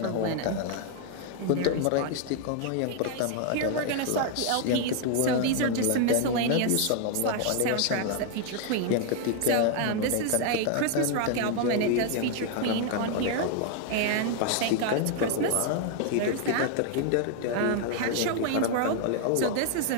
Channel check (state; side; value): different; both; correlation 0.00